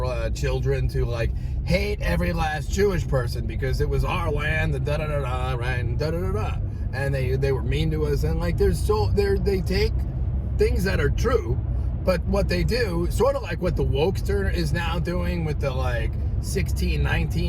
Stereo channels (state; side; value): identical; both; correlation 1.00